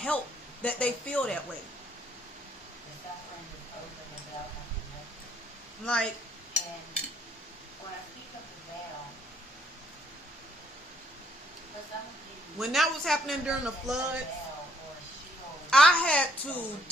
that they feel that way. Like, when that was happening during the floods, I had to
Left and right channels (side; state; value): both; normal; correlation 0.66